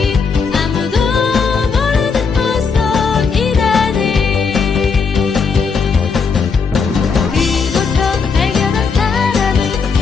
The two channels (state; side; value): quieter; right; 5.3 dB